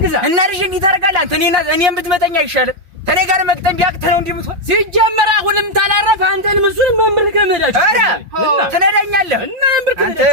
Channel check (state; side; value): late; left; 5.7 ms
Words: ግዛ እና ልጅ እንዲህ ታደርጋለህ አንተ? እኔን ብትመጠኝ አይሻልም? ከኔ ጋር መግጠም ቢያቅት ነው እንዲህ የምትሆን። ሲጀመር አሁንም ታላረፍ አንተንም እሱንም መምር ከመዳችሁ ኧረ ትነዳኛለህ እና መምር